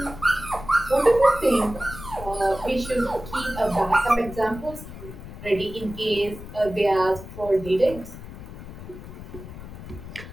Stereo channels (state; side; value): noise; left; rumble, 13 dB below the sound